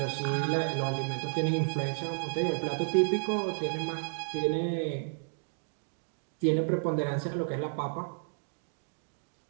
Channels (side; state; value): left; silent; digital silence